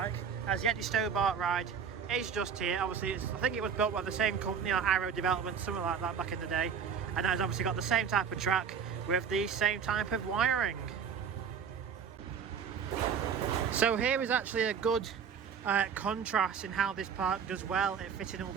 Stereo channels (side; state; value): left; quieter; 6.9 dB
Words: as the Eddie Stobart ride is just here. Obviously I think it was built by the same company, like Arrow Development, something like that back in the day, and has obviously got the same type of track with the same type of wiring. So here is actually a good contrast in how this park does well at fitting all